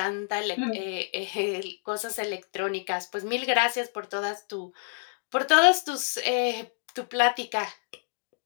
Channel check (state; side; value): silent; right; digital silence